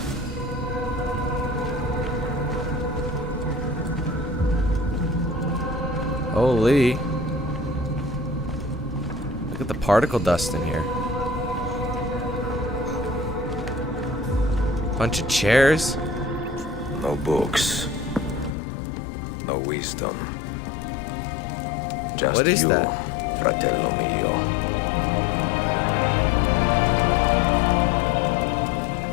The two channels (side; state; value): right; drops out; at 18.5 s